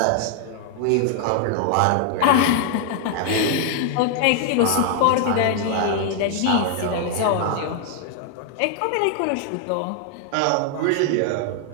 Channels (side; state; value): both; different; correlation 0.00